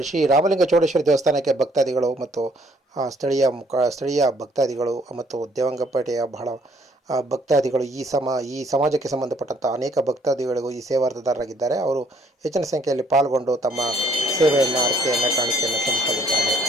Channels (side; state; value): both; normal; correlation 0.65